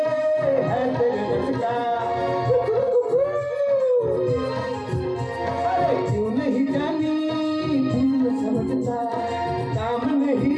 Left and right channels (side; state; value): both; identical; correlation 1.00